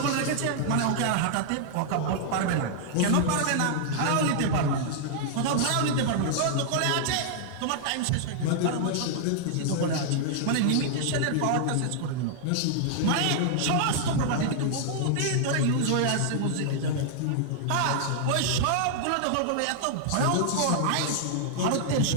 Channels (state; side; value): different; both; correlation -0.01